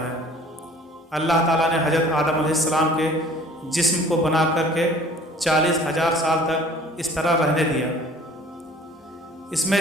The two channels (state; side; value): normal; both; correlation 0.51